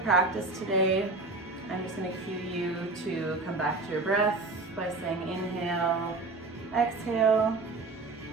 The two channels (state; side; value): quieter; left; 3.4 dB